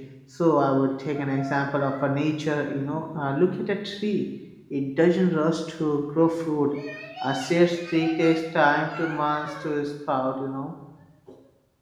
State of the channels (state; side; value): identical; both; correlation 1.00